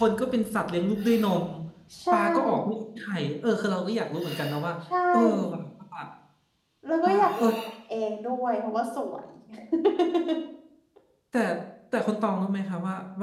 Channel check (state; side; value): identical; both; correlation 1.00